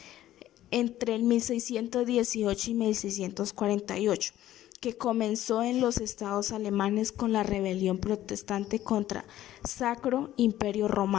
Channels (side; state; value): right; quieter; 13.5 dB